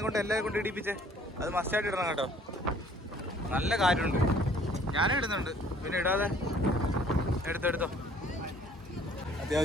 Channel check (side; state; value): both; normal; correlation 0.57